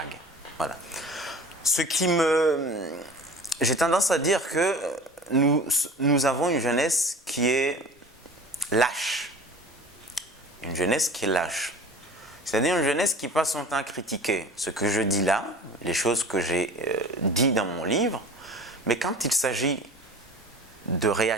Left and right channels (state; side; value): normal; both; correlation 0.40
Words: Voilà. ce qui me... J'ai tendance à dire que nous avons une jeunesse qui est lâche. Une jeunesse qui est lâche. C'est-à-dire une jeunesse qui passe son temps à critiquer ce que je dis là, les choses que j'ai dit dans mon livre, mais quand il s'agit de